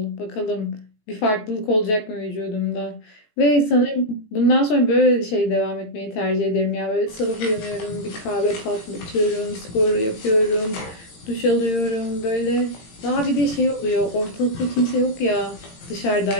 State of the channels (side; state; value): right; late; 18 ms